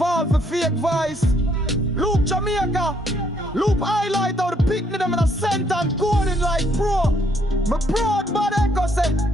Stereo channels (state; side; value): normal; both; correlation 0.69